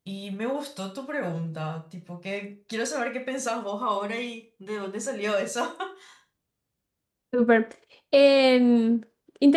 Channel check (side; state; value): both; identical; correlation 1.00